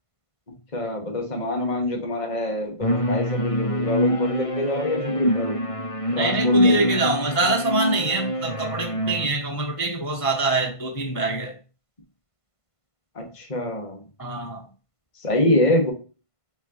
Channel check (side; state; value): right; late; 1.5 ms